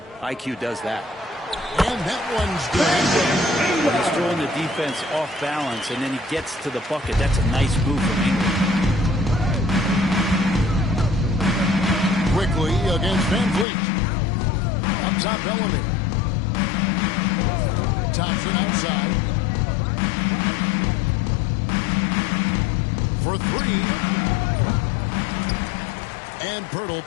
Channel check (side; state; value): right; drops out; at 13.7 s